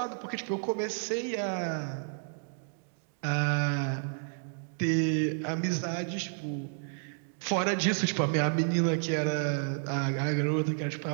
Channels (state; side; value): silent; left; 57 dB below the other